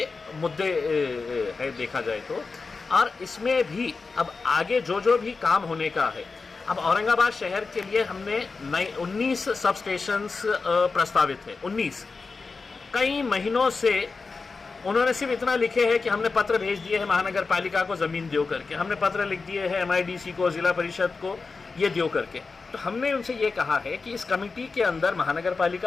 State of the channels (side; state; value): right; quieter; 4.3 dB